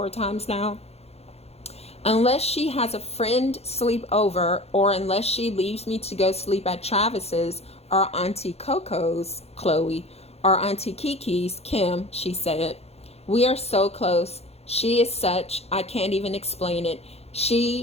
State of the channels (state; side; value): late; right; 0.30 ms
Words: times now? Unless she has a friend sleep over, or unless she leaves me to go sleep at Travis's or Auntie Coco's, Chloe, or Auntie Kiki's, Kim, she said. We are so close. She is such, I can't even explain it.